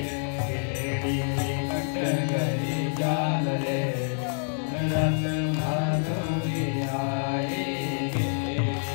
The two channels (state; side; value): silent; right; 60 dB below the other